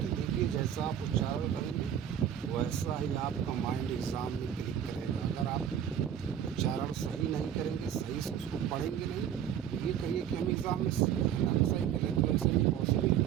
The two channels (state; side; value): quieter; left; 9.5 dB